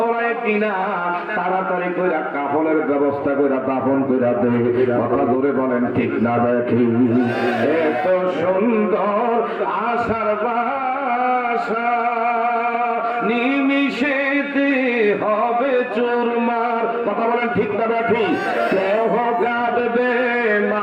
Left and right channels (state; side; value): identical; both; correlation 1.00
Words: কিনা। তাড়াতাড়ি করে কাফনের ব্যবস্থা করে দাফন করে দে। কথা ধরে বলেন ঠিক না দেখি? এত সুন্দর আশার বাসা নিমিশেতে হবে চুরমার। কথা বলেন ঠিক না দেখি? কেহ কাঁদবে